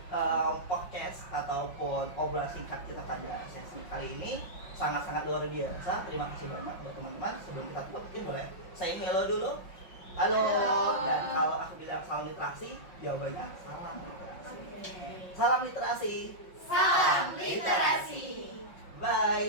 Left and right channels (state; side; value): late; right; 5.5 ms